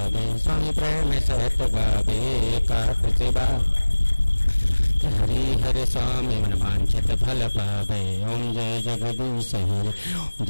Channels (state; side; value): inverted; both; correlation -1.00